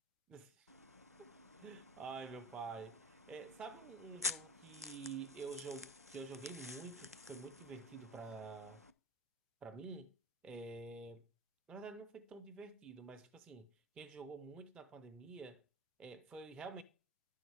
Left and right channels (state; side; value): normal; both; correlation 0.35